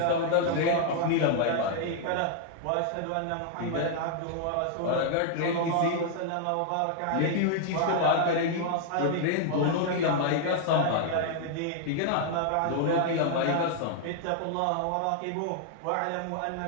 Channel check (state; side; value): different; both; correlation 0.00